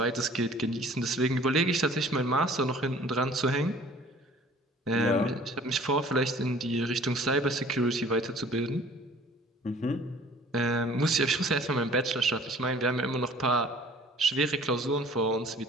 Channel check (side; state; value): both; normal; correlation 0.51